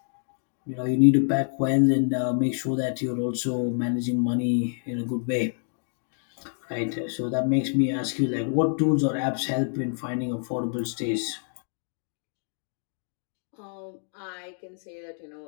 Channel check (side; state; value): right; silent; 58 dB below the other